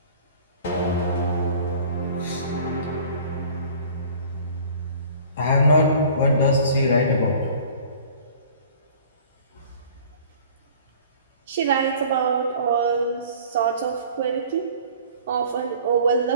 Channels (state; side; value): inverted; both; correlation -0.48